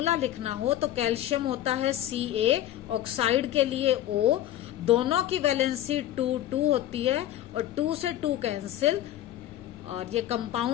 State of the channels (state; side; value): quieter; right; 12.8 dB